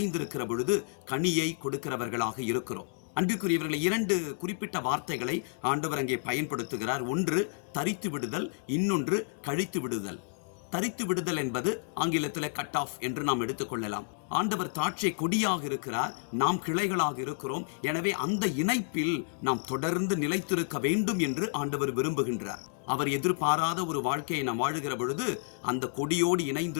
பொழுது கனியை கொடுக்கிறவர்களாக இருக்கிறோம். அன்பிற்குரியவர்களை, 2 குறிப்பிட்ட வார்த்தைகளை ஆண்டவர் அங்கே பயன்படுத்துகிறார். ஒன்று தரித்து விடுதல், இன்னொன்று கழித்து விடுதல். தரித்து விடுதல் என்பது ஆங்கிலத்தில் கட் ஆஃப் என்று நாம் எடுத்துக்கொள்ளலாம். ஆண்டவர் திராட்சை கொடியாக இருக்கிறார், நாம் கிளைகளாக இருக்கிறோம். எனவே அந்த இணைப்பில் நாம் தொடர்ந்து நிலைத்திருக்க வேண்டும் என்று ஆண்டவர் விரும்புகின்றார். அவர் எதிர்பாராத ஒரு வாழ்க்கையை நாம் வாழுகிற பொழுது அந்த கொடியோடு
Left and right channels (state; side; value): silent; right; digital silence